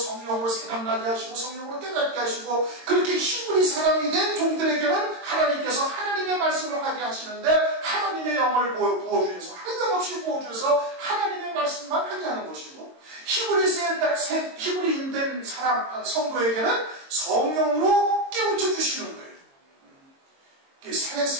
생각나게 하시고 성령으로 깨닫게 하시고 그렇게 히브리 사람이 된 종들에게는 하나님께서 하나님의 말씀을 하게 하시는데 하나님의 영을 부어주셔서 한량없이 부어주셔서 하나님의 말씀만 하게 하는 것이고 히브리인 된 사람 성도에게는 성령으로 깨우쳐 주시는 거예요. 새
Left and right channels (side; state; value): left; late; 22 ms